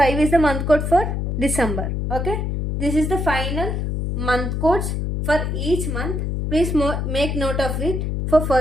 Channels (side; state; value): left; noise; hum, 1 dB below the sound